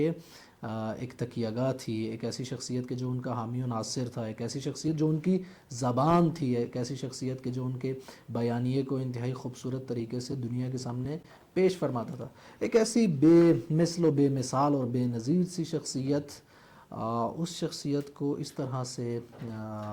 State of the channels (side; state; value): both; identical; correlation 1.00